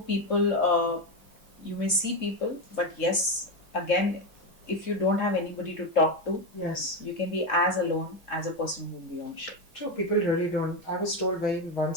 you may see people, but yes, again, if you don't have anybody to talk to, Yes. you can be as alone as a person who will be on ship. True. People really don't. I was told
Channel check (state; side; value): late; right; 4.8 ms